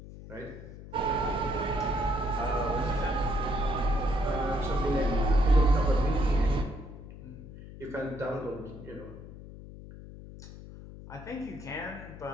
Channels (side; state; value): left; noise; hum, 15 dB below the sound